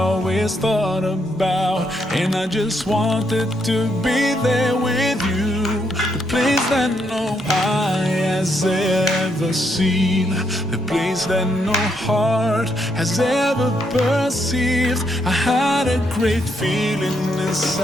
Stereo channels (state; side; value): normal; both; correlation 0.77